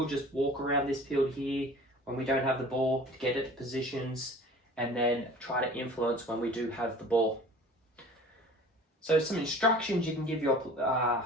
just walk around this field here when we don't have the ball to get it to positions and then try to influence when we do have the ball. So some instructions you can give your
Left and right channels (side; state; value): both; normal; correlation 0.44